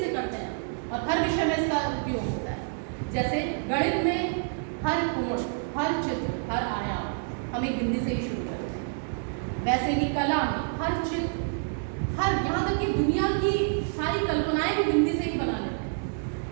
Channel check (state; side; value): silent; left; digital silence